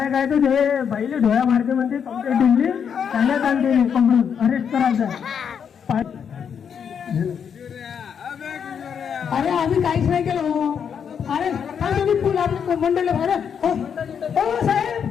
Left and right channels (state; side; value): quieter; right; 7.4 dB